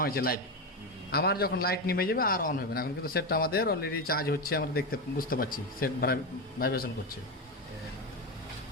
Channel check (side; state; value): both; normal; correlation 0.13